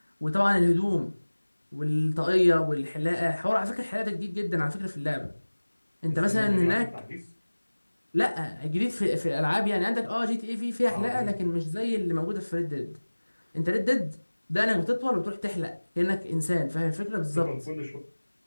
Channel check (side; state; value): both; inverted; correlation -1.00